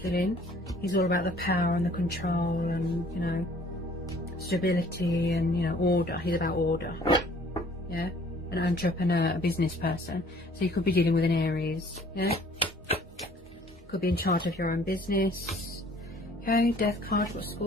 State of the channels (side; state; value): both; normal; correlation 0.55